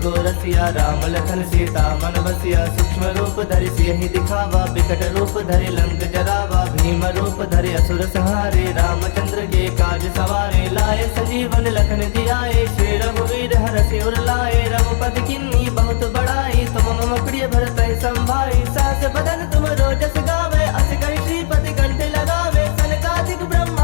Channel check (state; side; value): silent; right; digital silence